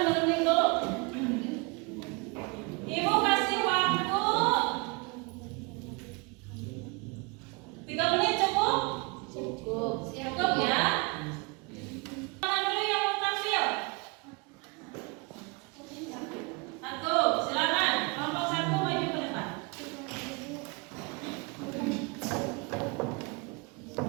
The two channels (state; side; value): quieter; left; 29.8 dB